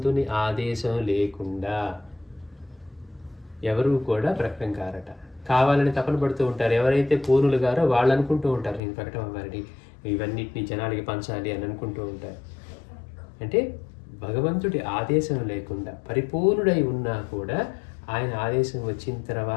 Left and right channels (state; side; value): drops out; right; at 8.8 s